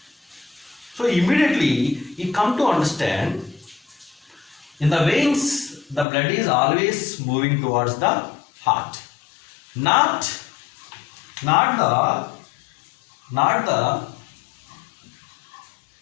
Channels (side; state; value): right; drops out; at 6.1 s